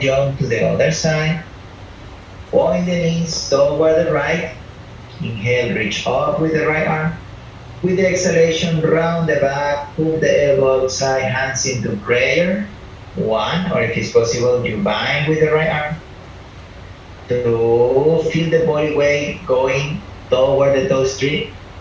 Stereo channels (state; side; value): identical; both; correlation 1.00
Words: to the other side. Point the knees toward the right. Inhale, reach up with the right arm. With the exhalation, round the back, hook the elbow outside, hands into prayer. 1, or if it's possible, you bind with the right arm. 2, feel the body weight going toward the toe strip.